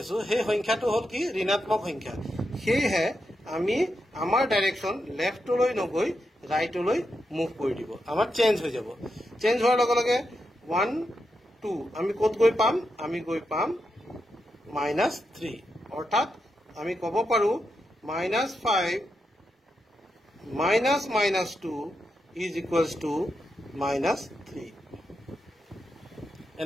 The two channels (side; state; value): both; normal; correlation 0.85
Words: আছো সেই সংখ্যাটো হল কি ঋণাত্মক সংখ্যা সেয়ে আমি আমাৰ ডাইৰেকশ্যন লেফটলৈ নগৈ ৰাইটলৈ মুভ কৰি দিব আমাৰ চেঞ্জ হৈ যাব চেঞ্জ হোৱাৰ লগে লগে 1 2 আমি কত গৈ পাম আমি গৈ পাম -3 অৰ্থাৎ আমি ক'ব পাৰো -5 -2 is equals to -3